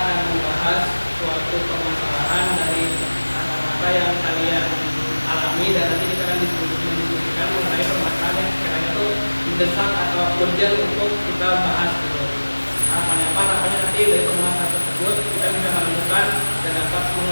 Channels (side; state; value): both; inverted; correlation -1.00